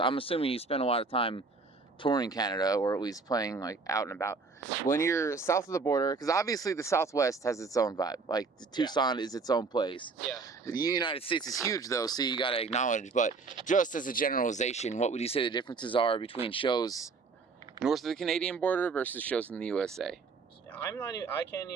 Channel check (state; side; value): quieter; left; 4.3 dB